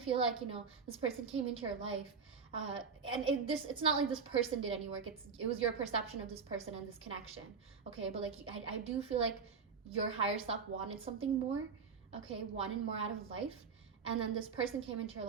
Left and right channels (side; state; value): left; quieter; 5.7 dB